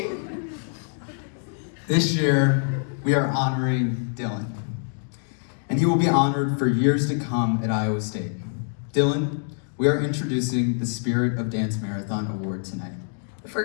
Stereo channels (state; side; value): silent; right; digital silence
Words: This year, we are honoring Dillyn, and he will be honored for years to come at Iowa State. Dillyn, we are introducing the Spirit of Dance Marathon Award tonight. The